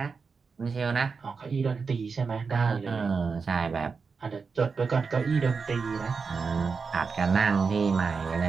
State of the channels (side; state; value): left; quieter; 5.1 dB